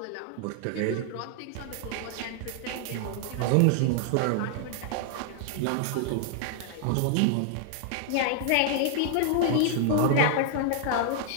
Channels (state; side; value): different; both; correlation 0.00